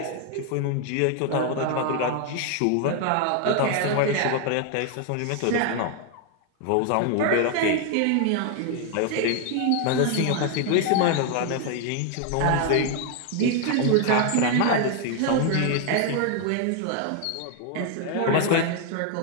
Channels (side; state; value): both; different; correlation 0.00